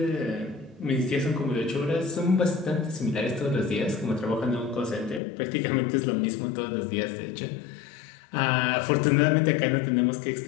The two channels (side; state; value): right; drops out; at 5.2 s